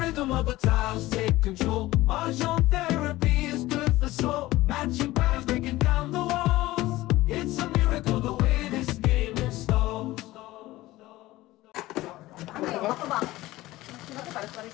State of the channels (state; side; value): quieter; right; 17.7 dB